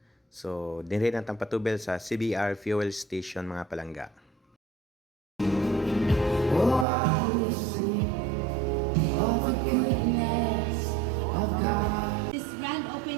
So dinhi natang patubel sa CBR Fuel Station mga palangga. Oh, I will sing of the goodness of God. This grand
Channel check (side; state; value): left; drops out; at 6.9 s